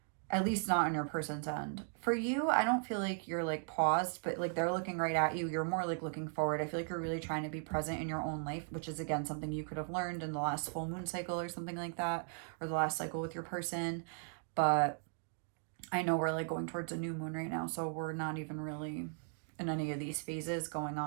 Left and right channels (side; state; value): left; silent; 53 dB below the other